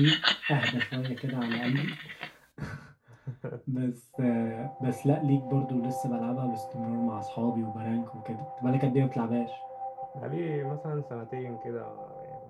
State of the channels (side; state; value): both; identical; correlation 1.00